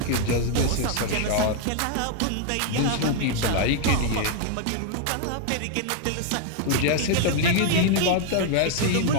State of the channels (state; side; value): different; both; correlation 0.00